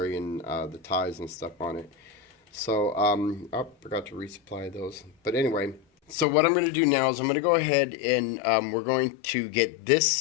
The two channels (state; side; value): drops out; right; at 6.2 s